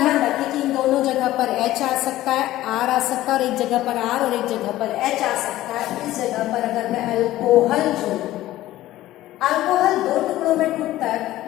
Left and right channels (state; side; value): quieter; right; 15.2 dB